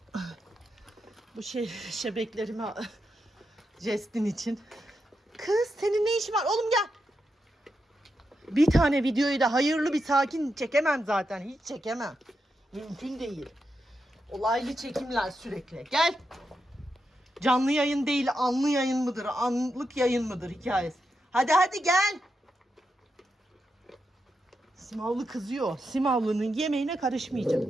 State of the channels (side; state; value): both; normal; correlation 0.86